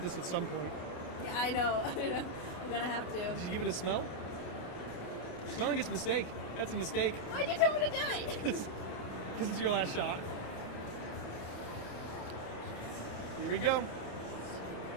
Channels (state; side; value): late; right; 28 ms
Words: at some point. Yeah, I know. I'm gonna have to. Did you give it a smell? Smelling it's a mistake. That's a mistake. Why'd you tell me to do it? Because it's your last shot. Here we go.